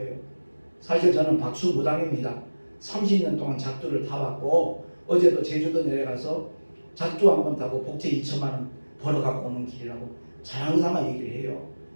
사실 저는 박수무당입니다. 30년 동안 작두를 타봤고 어제도 제주도 내려가서 작두 한 번 타고 복채 2천만 원 벌어갖고 오는 길이라고 자랑삼아 얘기를 해요.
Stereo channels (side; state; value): both; inverted; correlation -1.00